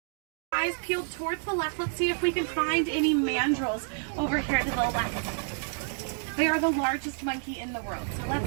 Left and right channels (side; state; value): left; silent; 59 dB below the other